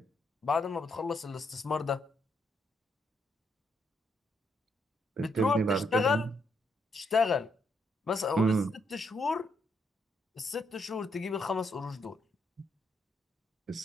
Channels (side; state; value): both; normal; correlation 0.76